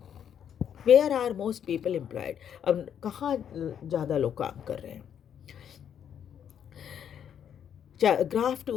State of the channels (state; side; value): quieter; right; 8.8 dB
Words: Where are most people employed, अब कहाँ ज़्यादा लोग काम कर रहे हैं। Graph